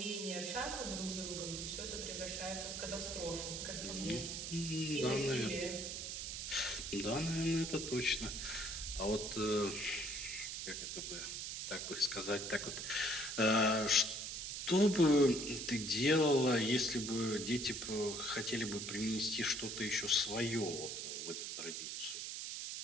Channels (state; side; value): noise; right; hiss, 5 dB below the sound